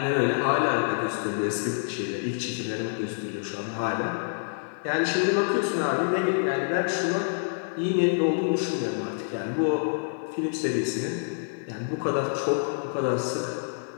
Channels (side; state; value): right; silent; 60 dB below the other